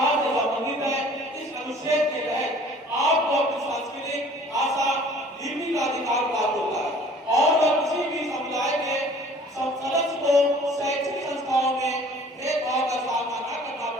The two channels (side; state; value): both; normal; correlation 0.51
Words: से संबंधित है। इस अनुच्छेद के तहत आपको अपनी सांस्कृतिक भाषा लिपि का अधिकार प्राप्त होता है और वह किसी भी समुदाय के सदस्य को शैक्षिक संस्थाओं में भेदभाव का सामना न करना